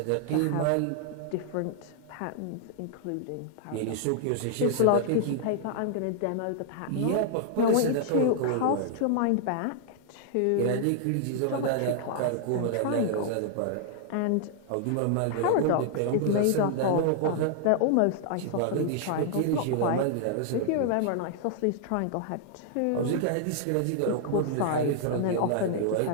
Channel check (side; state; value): both; different; correlation -0.01